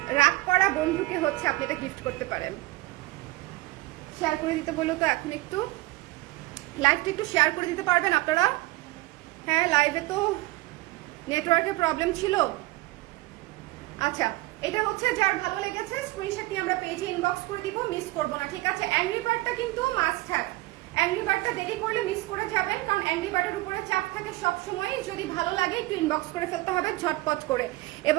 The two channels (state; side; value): quieter; left; 20.1 dB